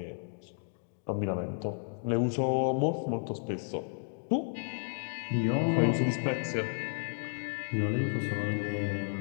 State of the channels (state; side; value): silent; right; digital silence